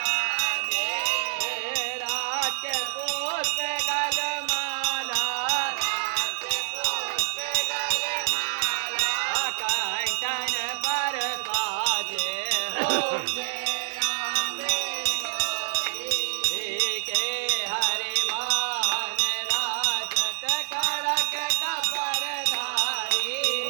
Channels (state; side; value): silent; left; digital silence